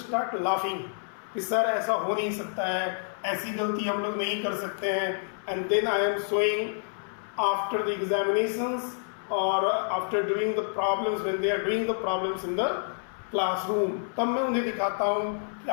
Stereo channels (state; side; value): silent; right; 59 dB below the other